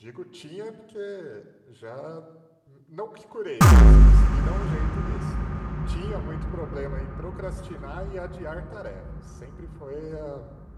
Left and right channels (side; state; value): both; identical; correlation 1.00